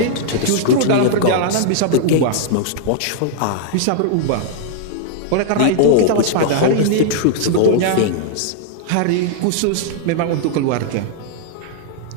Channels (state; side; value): different; both; correlation -0.01